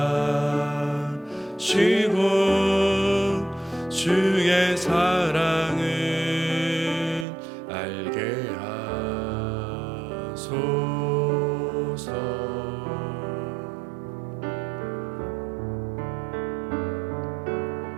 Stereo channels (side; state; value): left; drops out; at 7.2 s